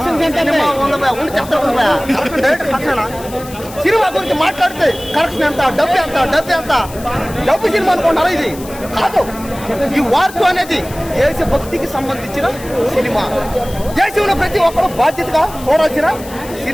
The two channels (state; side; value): noise; left; hiss, 17 dB below the sound